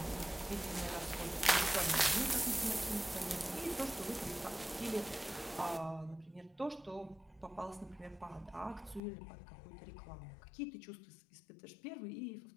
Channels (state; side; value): drops out; right; at 9.0 s